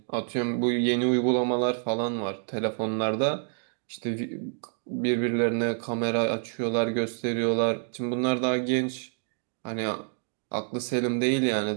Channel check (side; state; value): left; silent; 60 dB below the other